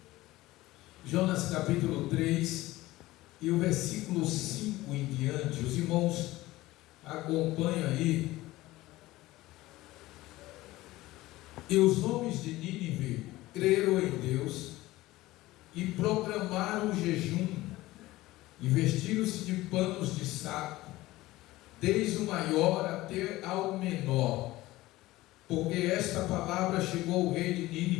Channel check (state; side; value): quieter; right; 17.9 dB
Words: Jonas capítulo 3 e o versículo 5 em diante. Os irmãos acompanham aí. E os homens de Nínive creram em Deus e proclamaram o jejum e vestiram-se de panos de saco, desde o maior até ao menor, porque esta palavra chegou ao rei de